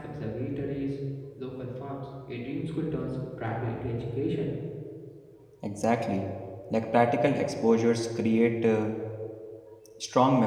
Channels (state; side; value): identical; both; correlation 1.00